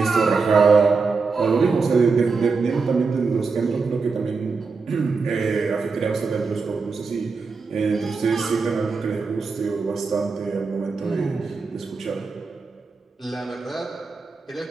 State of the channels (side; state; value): left; quieter; 4.6 dB